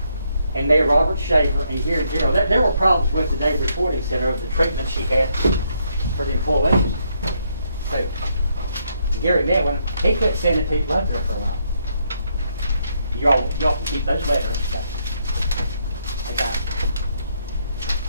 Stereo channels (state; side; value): inverted; both; correlation -0.74